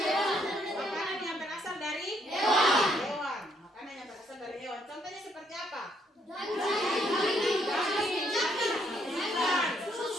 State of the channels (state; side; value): normal; both; correlation 0.71